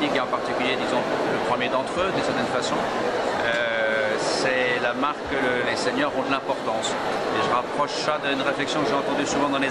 et en particulier, disons, le premier d'entre eux, d'une certaine façon, c'est la marque que les seniors ont de l'importance. Et je rapproche ça d'une réflexion que j'ai entendue souvent dans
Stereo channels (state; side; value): identical; both; correlation 1.00